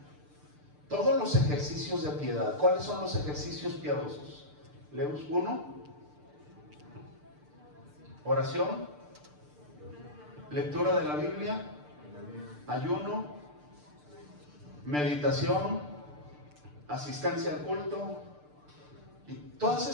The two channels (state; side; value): late; left; 6.8 ms